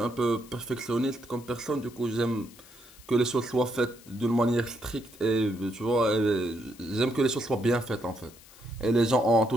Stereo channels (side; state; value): left; noise; hiss, 22 dB below the sound